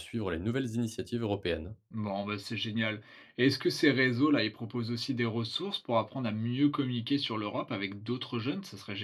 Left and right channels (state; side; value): identical; both; correlation 1.00